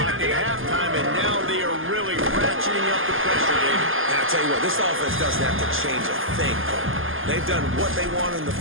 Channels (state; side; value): late; left; 0.59 ms